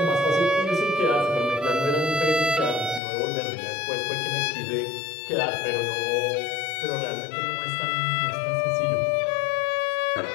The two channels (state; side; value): drops out; right; at 3.0 s